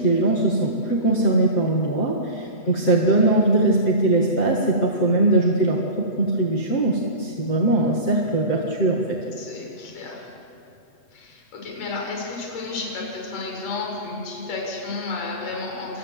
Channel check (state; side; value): late; right; 8.1 ms